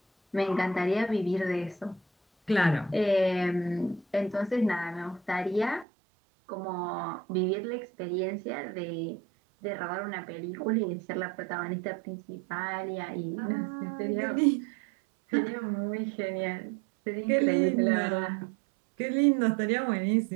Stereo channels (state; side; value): drops out; left; at 5.9 s